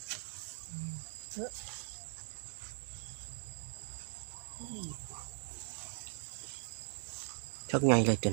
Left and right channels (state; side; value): silent; left; 51 dB below the other